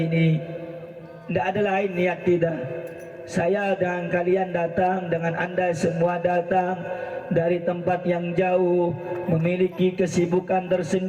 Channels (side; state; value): both; identical; correlation 1.00